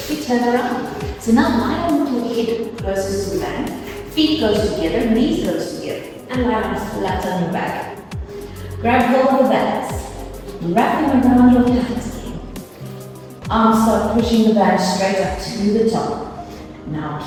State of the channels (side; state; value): both; identical; correlation 1.00